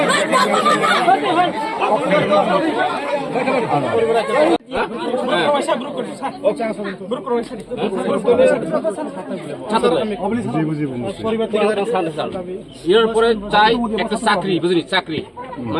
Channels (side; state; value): both; identical; correlation 1.00